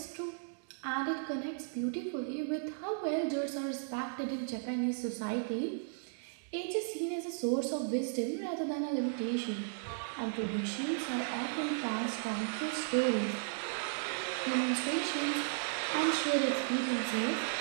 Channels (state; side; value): silent; left; digital silence